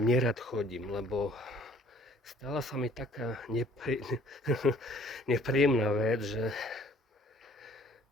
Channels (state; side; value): normal; both; correlation 0.57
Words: chodím, lebo stala sa mi taká nepríjemná vec, že